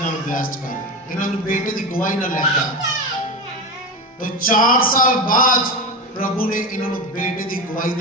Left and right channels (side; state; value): both; normal; correlation 0.20